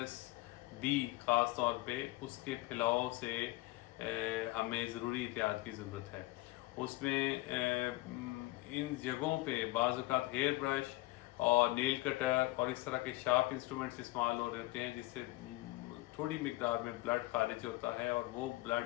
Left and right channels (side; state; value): right; quieter; 20.1 dB